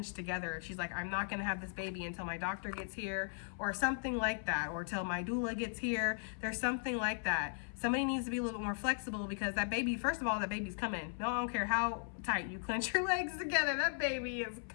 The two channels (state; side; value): silent; right; 53 dB below the other